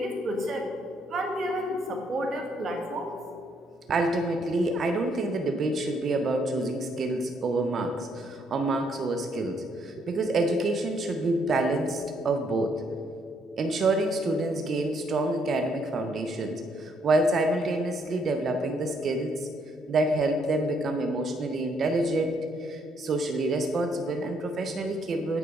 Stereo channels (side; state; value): both; normal; correlation 0.71